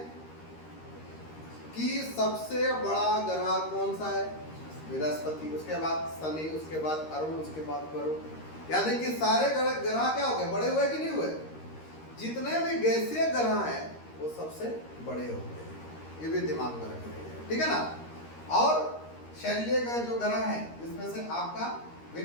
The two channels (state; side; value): late; right; 13 ms